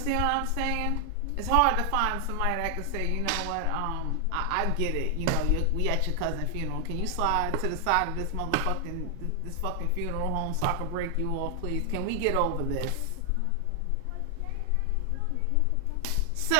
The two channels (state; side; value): different; both; correlation 0.00